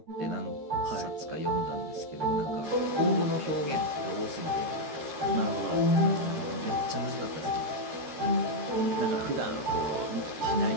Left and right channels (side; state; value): left; late; 13 ms